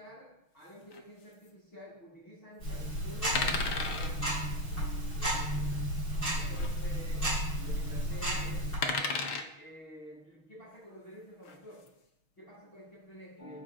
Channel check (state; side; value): late; right; 6.3 ms